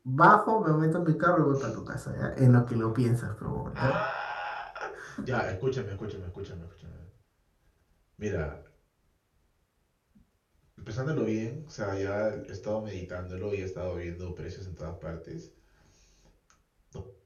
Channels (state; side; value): identical; both; correlation 1.00